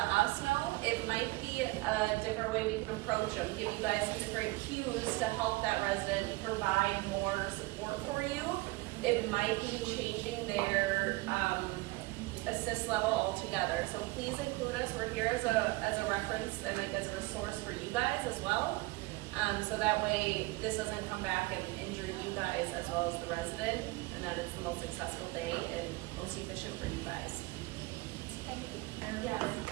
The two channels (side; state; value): left; quieter; 22.5 dB